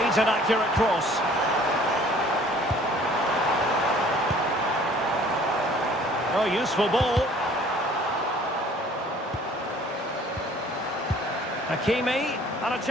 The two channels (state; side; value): normal; both; correlation 0.53